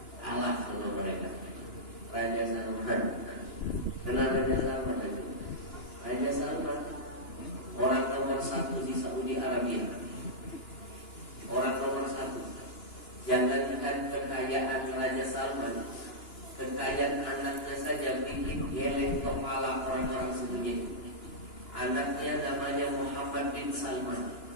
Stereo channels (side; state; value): right; late; 2.9 ms